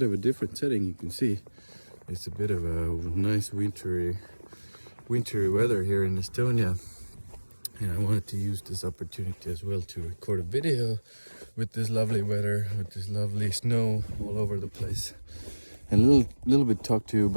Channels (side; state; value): both; inverted; correlation -1.00